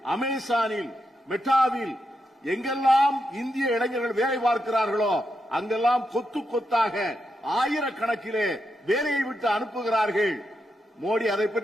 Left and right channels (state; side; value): normal; both; correlation 0.84